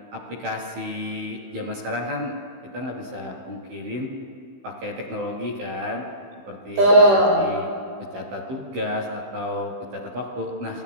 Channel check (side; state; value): left; late; 16 ms